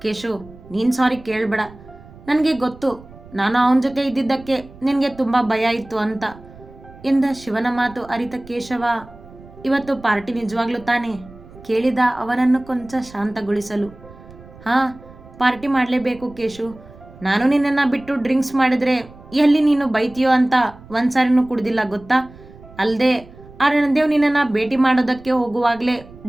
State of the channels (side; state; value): right; noise; rumble, 21 dB below the sound